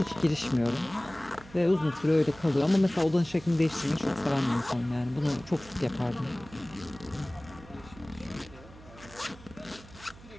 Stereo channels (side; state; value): right; noise; hum, 20 dB below the sound